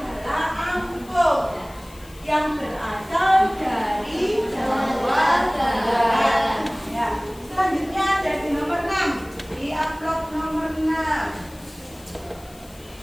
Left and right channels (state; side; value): noise; left; hiss, 23 dB below the sound